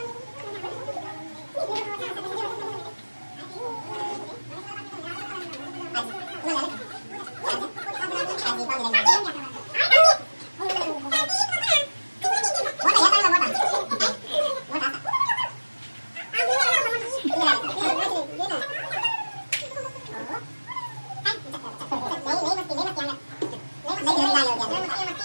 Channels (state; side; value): inverted; both; correlation -1.00